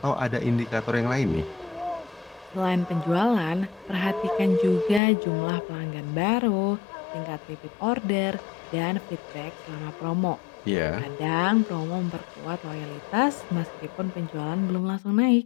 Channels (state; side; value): drops out; right; at 5.0 s